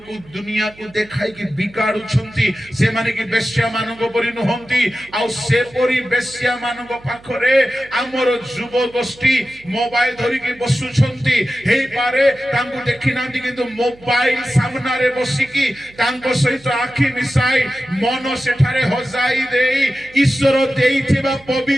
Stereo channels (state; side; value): noise; right; hum, 24 dB below the sound